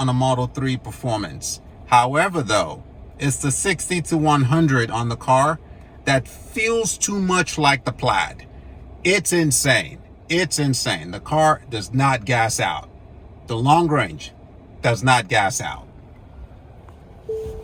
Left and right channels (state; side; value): identical; both; correlation 1.00